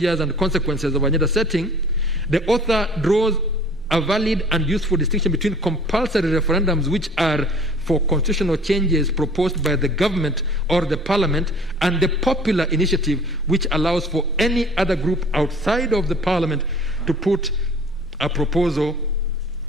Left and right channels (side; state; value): both; normal; correlation 0.49